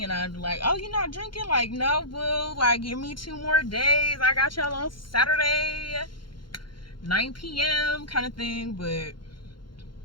and I'm like, oh, you're not drinking? Like, no, boo. Like, give me 2 more days. I got y'all on Saturday, 9 p.m. kind of thing. But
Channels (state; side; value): late; right; 0.72 ms